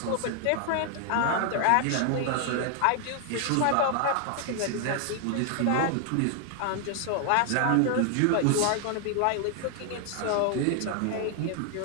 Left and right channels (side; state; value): both; different; correlation 0.00